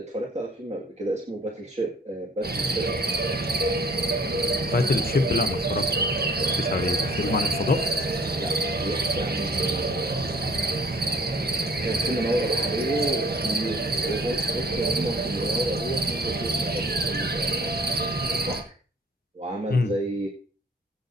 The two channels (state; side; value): normal; both; correlation 0.56